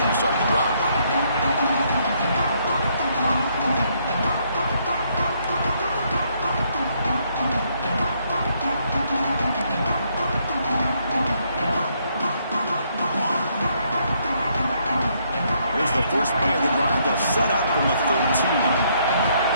to start the drive. The first play of the drive, they'll set up from the 13.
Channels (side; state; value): both; inverted; correlation -0.72